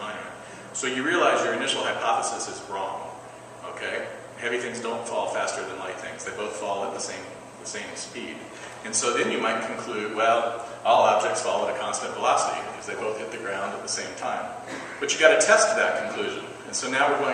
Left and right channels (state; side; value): identical; both; correlation 1.00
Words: Monument. So you realize your initial hypothesis is wrong. Okay? Heavy things don't fall faster than light things. They both fall at the same speed. And so then you might conclude, well, all objects fall at a constant velocity because they both hit the ground at the same time. But you got to test that conclusion. And so now we're